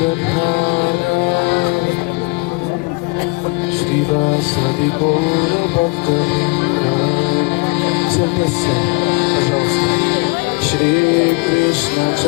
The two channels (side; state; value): right; quieter; 28.2 dB